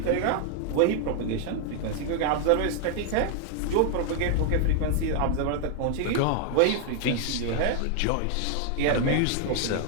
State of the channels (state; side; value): different; both; correlation 0.00